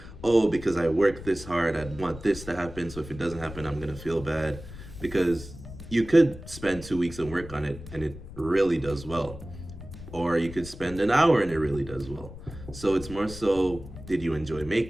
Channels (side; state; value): left; noise; rumble, 14 dB below the sound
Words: oh, because I worked this hard, I'd want this to happen, so if it doesn't happen, I'm gonna feel bad. Because you could spend 2 weeks and work on it and it really does well. Or you could spend an hour and it really does well. So it's more so, did you enjoy